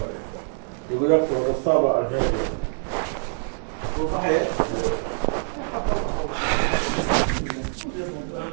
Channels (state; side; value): silent; left; 62 dB below the other